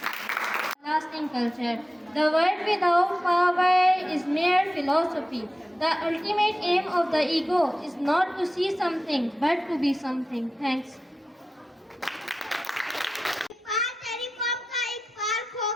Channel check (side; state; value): both; normal; correlation 0.93